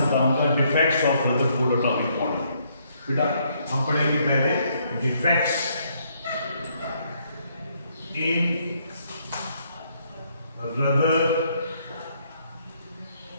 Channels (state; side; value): inverted; both; correlation -0.71